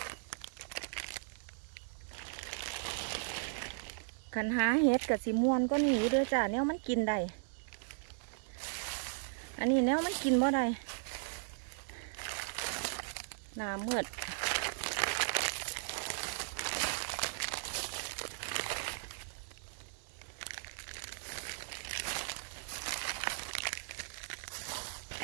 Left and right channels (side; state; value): left; silent; digital silence